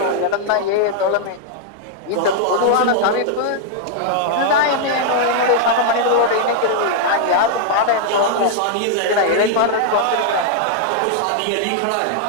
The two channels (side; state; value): both; different; correlation -0.01